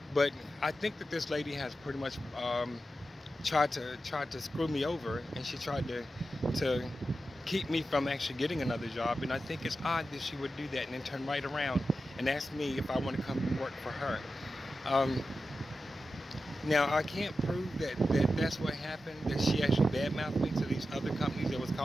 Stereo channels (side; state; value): both; normal; correlation 0.91